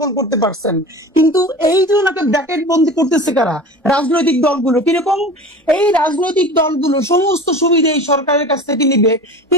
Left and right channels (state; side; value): normal; both; correlation 0.36